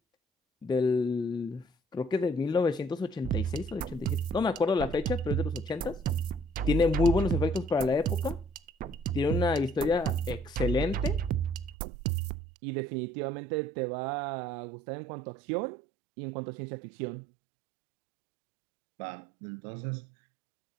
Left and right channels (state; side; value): drops out; left; at 11.8 s